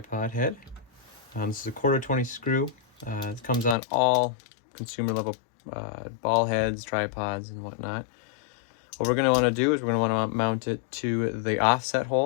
head. This is a 1/4-20 screw. It comes on all consumer level ball heads, tripods, and whatnot. What we're going to want to do is we're going to want to mount it to the offset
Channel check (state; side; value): drops out; right; at 3.8 s